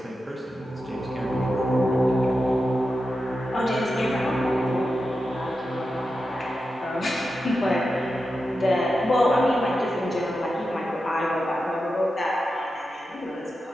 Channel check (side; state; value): both; normal; correlation 0.90